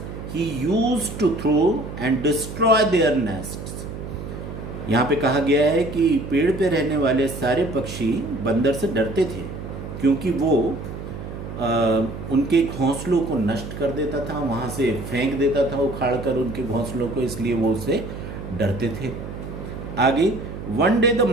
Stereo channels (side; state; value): right; noise; hum, 9 dB below the sound